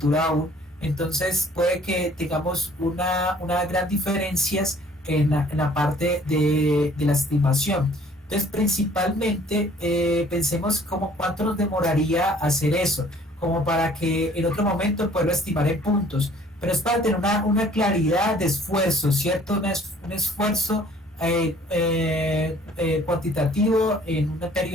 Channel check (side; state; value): both; normal; correlation 0.56